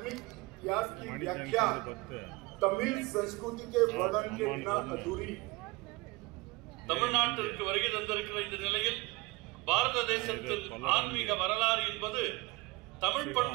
इतिहास की व्याख्या तमिल संस्कृति के वर्णन के बिना अधूरी. தமிழ்நாட்டிற்கு வருகை தந்திருக்கிற இந்த நிலையில் பாரத தேசத்தின் ஆன்மீக வரலாறு என்பது தமிழ்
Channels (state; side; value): quieter; left; 23.7 dB